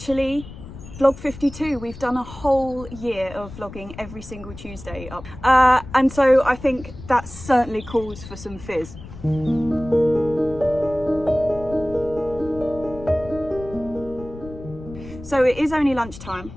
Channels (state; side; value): noise; left; rumble, 14 dB below the sound